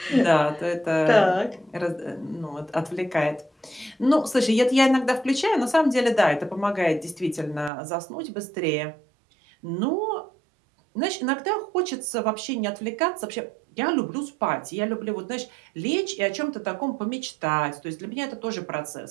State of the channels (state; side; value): drops out; left; at 7.7 s